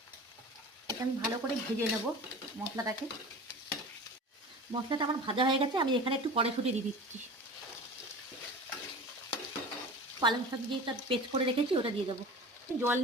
এটা আমি ভালো করে ভেজে নেব মশলাটাকে। মশলাটা আমার ভাজা হয়ে গেছে। আমি এখানে একটু কড়াইশুঁটি দিয়ে দিচ্ছি। পালং শাক যেটা পেস্ট করে রেখেছি ওটা দিয়ে দেবো। জল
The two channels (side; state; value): both; normal; correlation 0.36